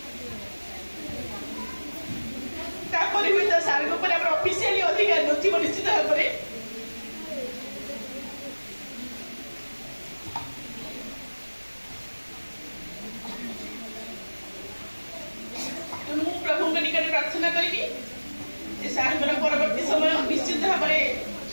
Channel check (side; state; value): both; inverted; correlation -1.00